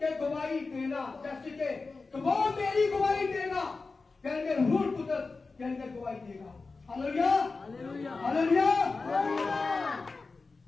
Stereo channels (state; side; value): quieter; right; 4.0 dB